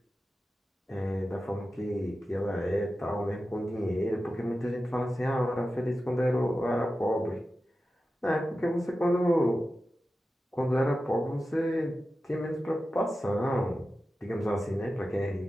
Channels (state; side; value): normal; both; correlation 0.93